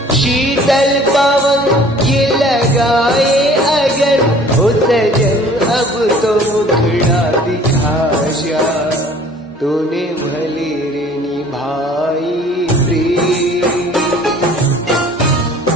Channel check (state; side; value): normal; both; correlation 0.51